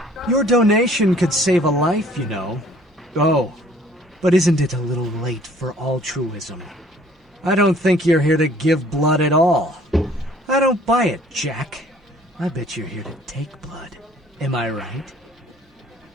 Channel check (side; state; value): both; normal; correlation 0.56